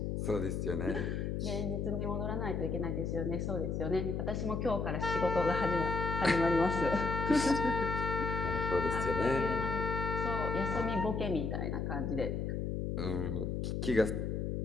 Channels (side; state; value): left; noise; hum, 1 dB below the sound